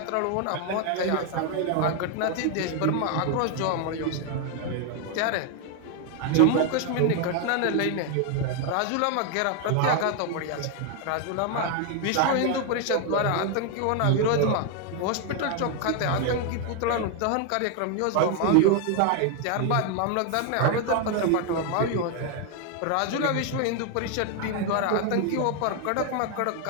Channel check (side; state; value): both; different; correlation 0.01